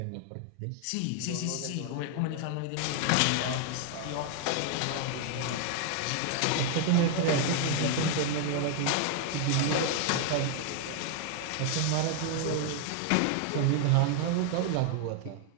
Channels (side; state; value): both; different; correlation 0.00